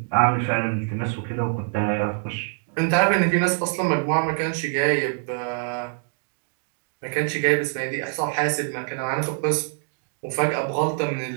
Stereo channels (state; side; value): silent; left; 62 dB below the other